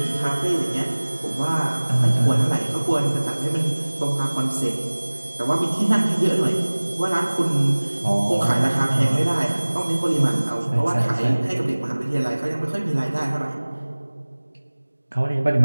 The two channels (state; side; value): inverted; both; correlation -1.00